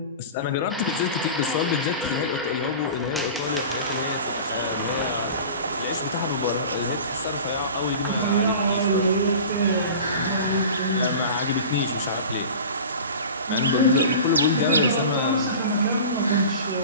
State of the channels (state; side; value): inverted; both; correlation -0.37